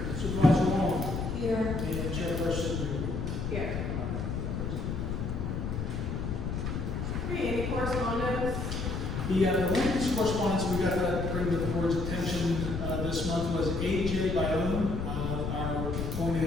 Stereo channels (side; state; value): left; noise; rumble, 3 dB below the sound